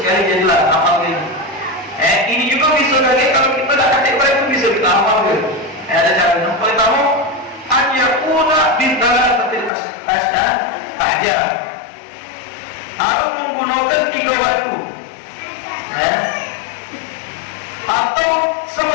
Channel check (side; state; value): right; drops out; at 9.7 s